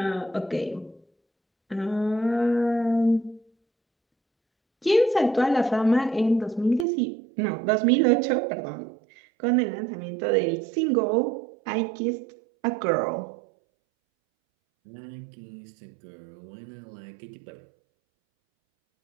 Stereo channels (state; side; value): drops out; left; at 6.9 s